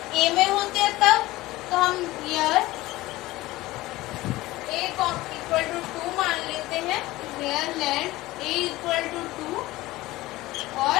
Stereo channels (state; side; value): quieter; right; 18.2 dB